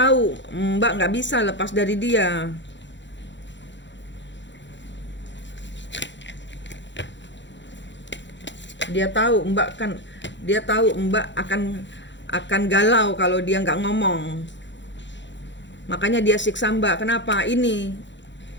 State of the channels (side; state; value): right; late; 0.53 ms